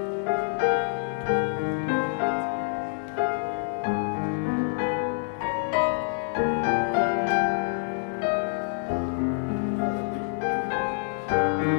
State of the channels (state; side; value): silent; right; digital silence